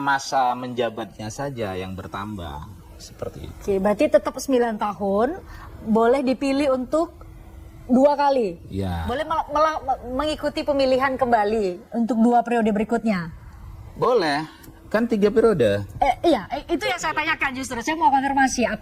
menjabatnya saja yang bertambah. Seperti itu. Oke, berarti tetap 9 tahun boleh dipilih untuk 2 kali. Ya. Boleh mengikuti pemilihan kembali untuk 2 periode berikutnya. Boleh. Kan 3 periode. Iya, itu yang saya tanyakan justru. Saya mau konfirmasi,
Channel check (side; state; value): both; identical; correlation 1.00